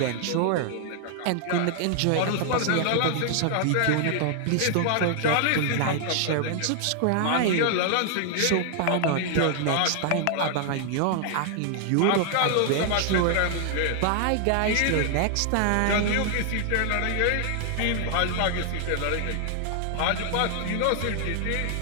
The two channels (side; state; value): both; different; correlation 0.00